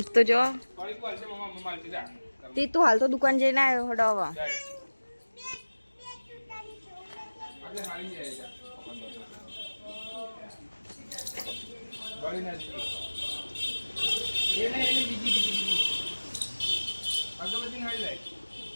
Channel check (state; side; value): inverted; both; correlation -1.00